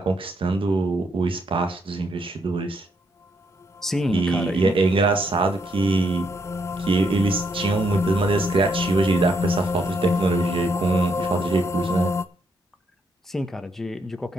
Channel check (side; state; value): both; normal; correlation 0.75